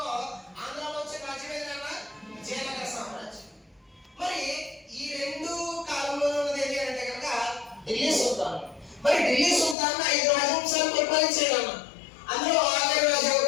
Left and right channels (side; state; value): right; drops out; at 9.8 s